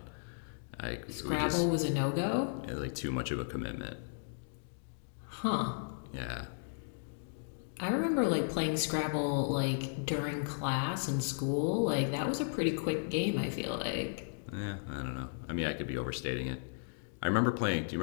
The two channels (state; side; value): silent; right; digital silence